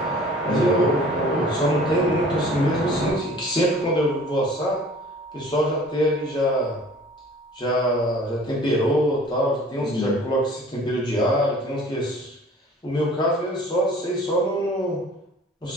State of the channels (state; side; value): normal; both; correlation 0.48